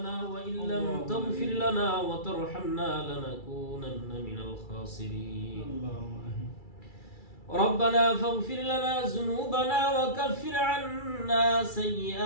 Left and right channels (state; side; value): late; right; 2.3 ms